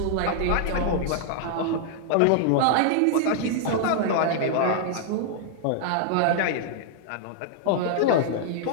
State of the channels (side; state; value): both; different; correlation -0.01